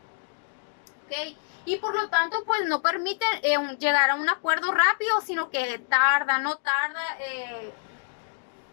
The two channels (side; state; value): right; silent; digital silence